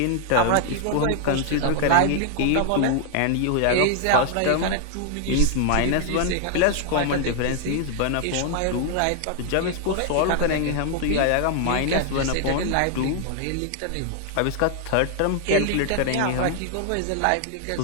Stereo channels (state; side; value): different; both; correlation 0.00